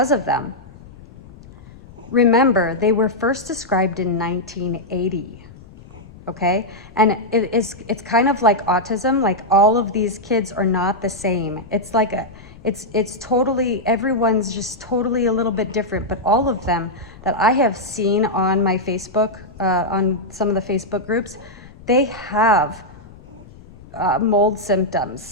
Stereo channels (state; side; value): noise; left; rumble, 20 dB below the sound